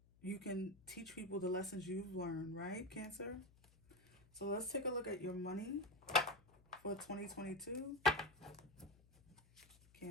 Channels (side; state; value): left; noise; hum, 27 dB below the sound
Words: you can teach people the lessons you've learned, right, Cancer? So let's take a look at your money for 2022.